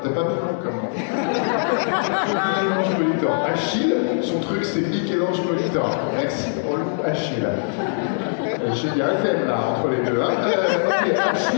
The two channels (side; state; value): right; silent; digital silence